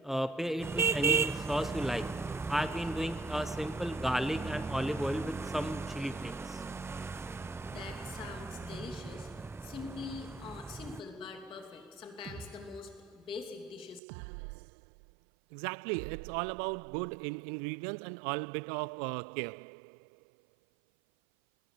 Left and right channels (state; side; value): drops out; left; at 14.0 s